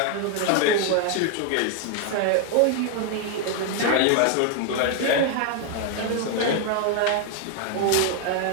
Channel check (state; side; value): different; both; correlation 0.00